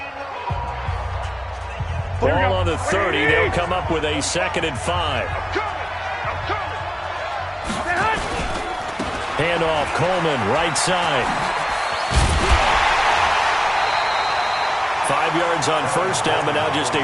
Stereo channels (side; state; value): both; identical; correlation 1.00